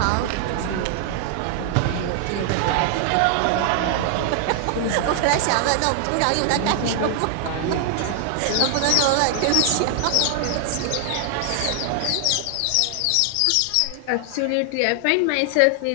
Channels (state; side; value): different; both; correlation 0.00